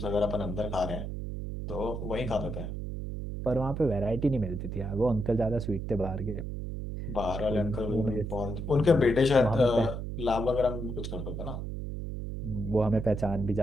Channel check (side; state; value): right; noise; hum, 5 dB below the sound